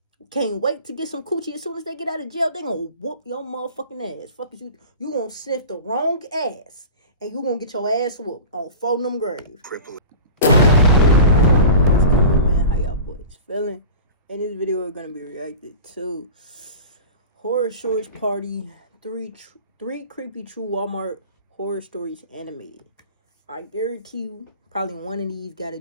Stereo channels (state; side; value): inverted; both; correlation -0.36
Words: can't wait to get some coochie. As soon as they get out of jail, they gonna whoop your motherfucking ass. Fuck is you. You gonna sniff the wrong ass. And you gonna get your ass whooped on 4 of them graves. Cripple. How y'all boys feeling? In this video, we're gonna be reacting to Horror Stories Party 3 creepy true Walmart horror stories animated. I guarantee you, probably one of these got to